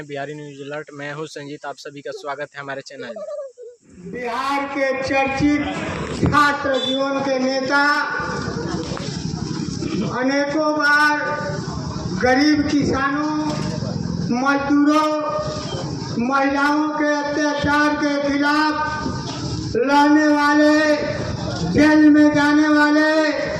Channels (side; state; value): both; identical; correlation 1.00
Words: बिहारी न्यूज अलर्ट। मैं हूं संजीत, आप सभी का स्वागत है हमारे चैनल में। बिहार के चर्चित छात्र जीवन के नेता अनेकों बार गरीब किसानों, मजदूरों, महिलाओं के अत्याचार के खिलाफ लड़ने वाले, जेल में जाने वाले